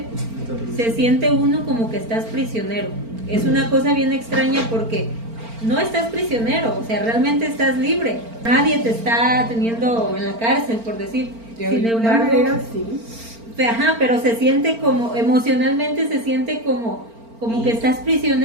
se siente uno como que estás prisionero. Es una cosa bien extraña porque no estás prisionero, o sea, realmente estás libre. Nadie te está teniendo en la cárcel, por decir. Sin embargo, pero se siente como, emocionalmente se siente como que estás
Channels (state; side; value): late; left; 4.4 ms